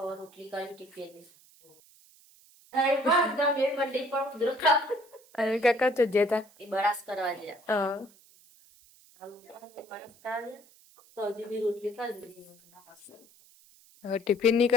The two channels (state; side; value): noise; right; hiss, 27 dB below the sound